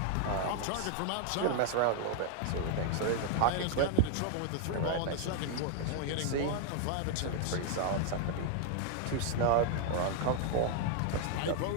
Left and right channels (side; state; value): both; different; correlation 0.00